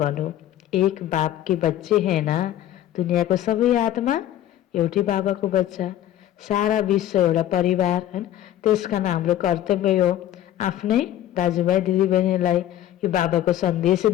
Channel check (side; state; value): right; quieter; 12.4 dB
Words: एक बाप के बच्चे हैं ना, दुनियाँको सबै आत्मा एउटै बाबाको बच्चा, सारा विश्व एउटा परिवार हैन। त्यसकारण हाम्रो कर्तव्य हो आफ्नै दाजुभाइ दिदीबहिनीलाई यो बाबाको सन्देश